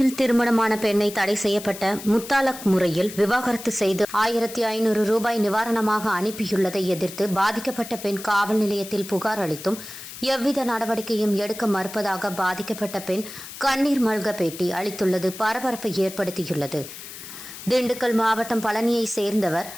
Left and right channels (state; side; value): noise; left; hiss, 13 dB below the sound